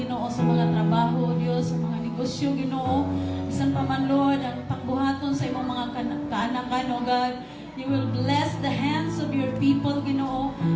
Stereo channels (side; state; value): both; identical; correlation 1.00